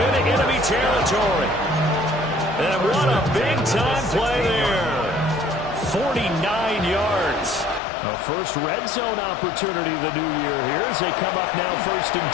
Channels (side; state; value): right; drops out; at 7.8 s